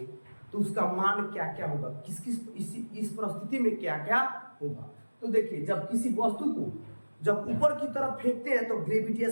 तो उसका मान क्या क्या होगा, किस किस इस परिस्थिति में क्या क्या होगा। तो देखिए, जब किसी वस्तु को जब ऊपर की तरफ फेंकते हैं तो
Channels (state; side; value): inverted; both; correlation -1.00